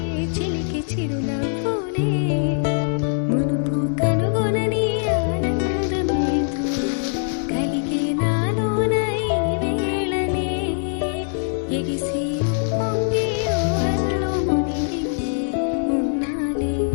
చిలికి చిరునవ్వులే మునుపు కనుగొనని ఆనందమేతో కలిగే నాలోన ఈ వేళనే ఎగిసి ఉప్పొంగి ఊహల్లో మునిగి ఉన్నాలే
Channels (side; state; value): right; silent; 64 dB below the other